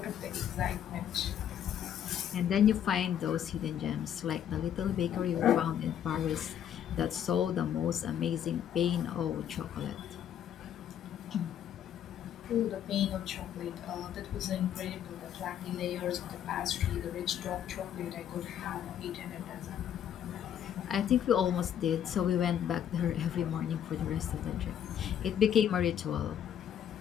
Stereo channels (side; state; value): right; quieter; 9.7 dB